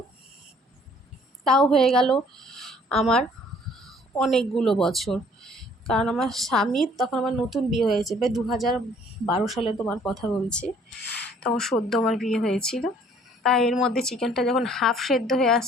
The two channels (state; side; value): normal; both; correlation 0.58